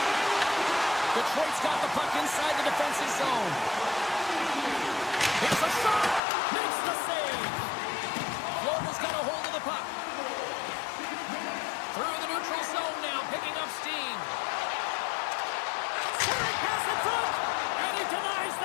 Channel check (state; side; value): drops out; right; at 6.2 s